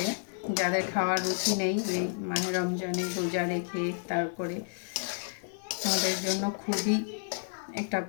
যাদের খাওয়ার রুচি নেই, এই মাহে রমজানে রোজা রেখে তারপরে আমাদের জন্য খুবই একটা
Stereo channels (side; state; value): right; silent; 57 dB below the other